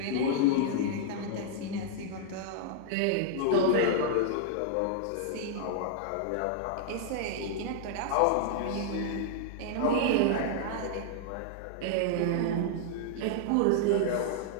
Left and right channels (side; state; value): both; different; correlation -0.01